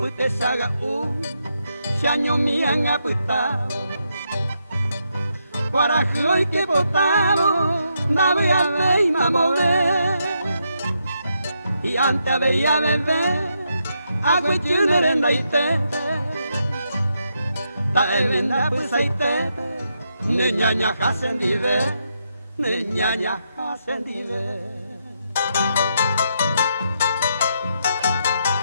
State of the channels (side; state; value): both; inverted; correlation -0.80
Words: te saga se año me han apitado. Guarajo y que botado, da voy a ver y mamoré. Y antes veía beber, agua y chunerenda y tete. Ta elenda pues hay tete, niñaña hacen dive, niñaña hacen dive.